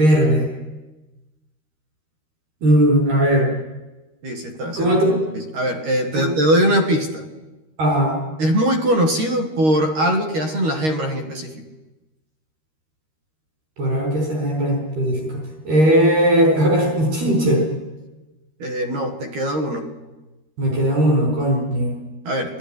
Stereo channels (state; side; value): late; left; 13 ms